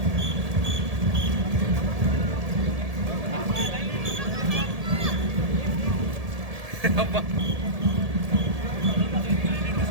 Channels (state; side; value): late; left; 1.7 ms